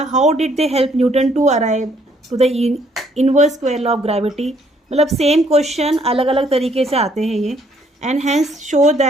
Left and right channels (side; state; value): both; normal; correlation 0.66